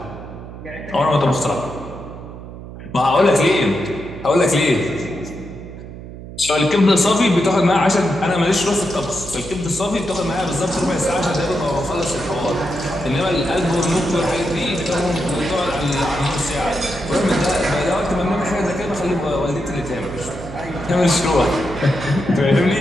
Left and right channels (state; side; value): noise; right; hum, 13 dB below the sound